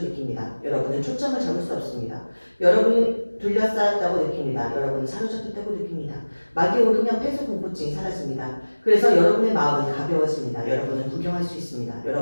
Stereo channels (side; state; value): both; inverted; correlation -1.00